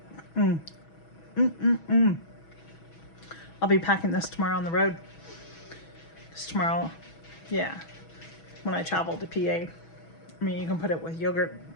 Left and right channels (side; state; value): right; late; 6.2 ms